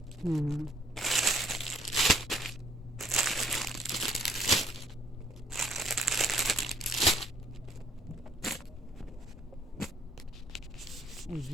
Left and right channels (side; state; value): both; normal; correlation 0.64